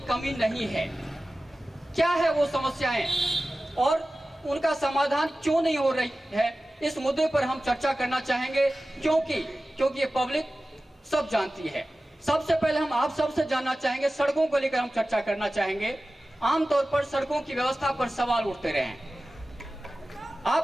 कमी नहीं है। क्या है वो समस्याएं और उनका समाधान क्यों नहीं हो रही है, इस मुद्दे पर हम चर्चा करना चाहेंगे, क्योंकि ये पब्लिक सब जानती है। सबसे पहले हम आप सबसे जानना चाहेंगे, सड़कों को लेकर हम चर्चा करना चाहेंगे। आमतौर पर सड़कों की व्यवस्था पर सवाल उठते रहे हैं। आप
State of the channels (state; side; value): normal; both; correlation 0.96